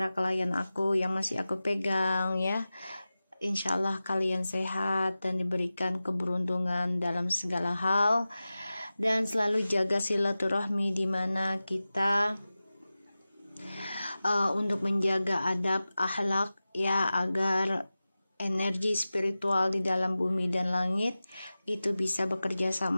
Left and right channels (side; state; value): both; inverted; correlation -0.96